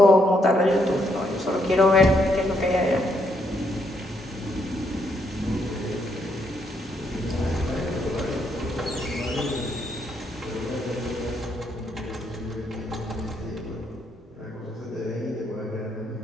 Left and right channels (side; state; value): both; normal; correlation 0.75